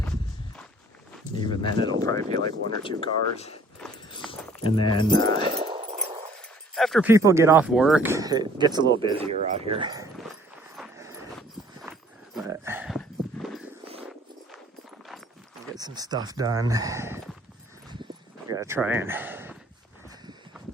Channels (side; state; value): both; normal; correlation 0.56